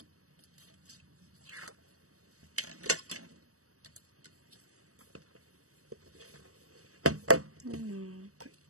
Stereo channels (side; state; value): left; late; 0.65 ms